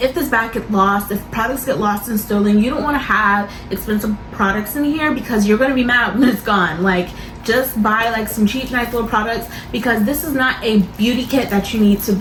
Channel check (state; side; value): identical; both; correlation 1.00